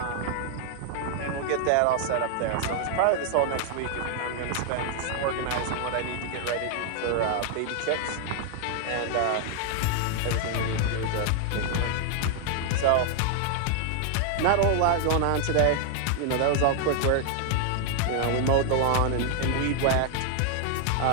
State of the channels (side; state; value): both; different; correlation 0.00